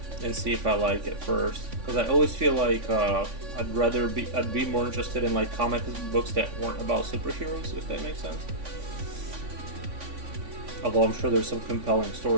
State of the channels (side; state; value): left; late; 3.5 ms